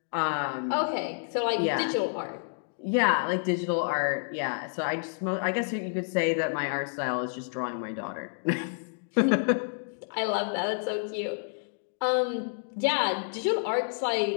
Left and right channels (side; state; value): right; silent; digital silence